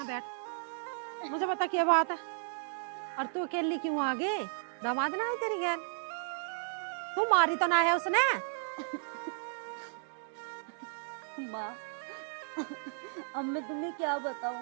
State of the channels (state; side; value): silent; left; digital silence